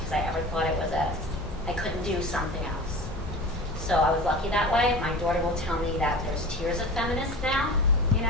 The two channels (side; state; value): both; normal; correlation 0.34